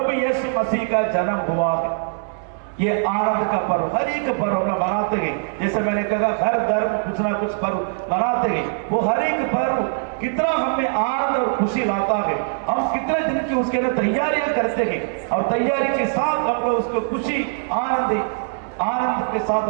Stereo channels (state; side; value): silent; left; 64 dB below the other